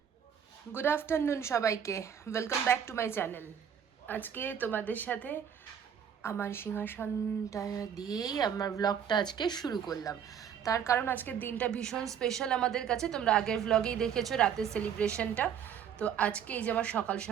গুড আফটারনুন সবাইকে, welcome back to my channel. আজকে তোমাদের সাথে আমার সিংহাসনটা দিয়েই আমার ব্লগটা আজকে শুরু করলাম। তার কারণ আজকের দিনটা ভীষণ স্পেশাল আমাদের কাছে। তোমরা আগের ব্লগেই দেখেছো রাতের সেলিব্রেশনটা। তো আজকে এই যে আমার সকাল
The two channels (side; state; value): left; quieter; 8.3 dB